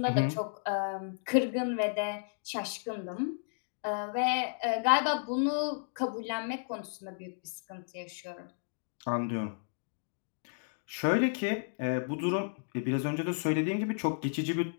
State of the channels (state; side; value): silent; right; digital silence